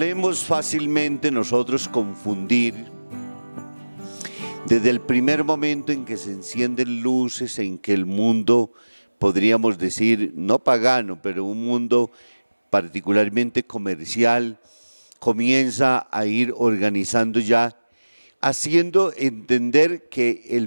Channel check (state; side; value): inverted; both; correlation -1.00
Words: fácilmente nosotros confundir desde el primer momento en que se encienden luces, en que el mundo, podríamos decir, no pagano, pero un mundo particularmente comercial, comienza a ir organizando ya, haciendo entender que